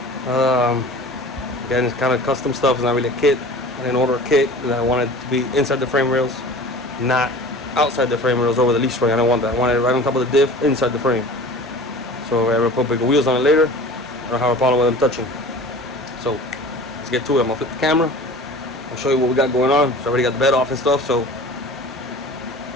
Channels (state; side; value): normal; both; correlation 0.40